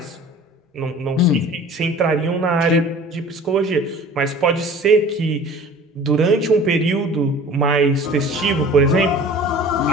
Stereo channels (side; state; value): both; normal; correlation 0.44